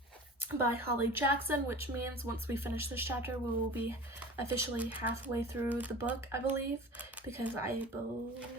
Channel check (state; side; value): normal; both; correlation 0.38